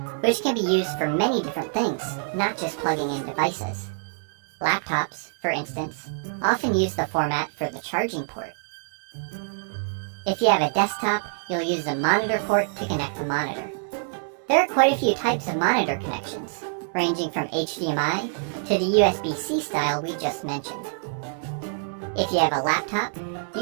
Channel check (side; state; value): left; silent; digital silence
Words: which can be used for many different things, not just plugging in devices. Laptops, for instance, often use the format for the charging port. If you have a desktop, you'll use the monitor port to connect the monitor. There are quite a few types of monitor connections, ranging from HDMI to the USB-C style we just mentioned. If you have a laptop,